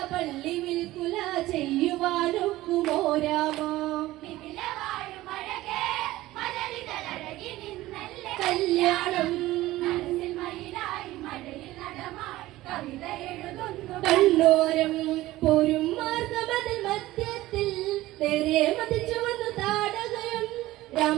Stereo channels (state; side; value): quieter; left; 16.9 dB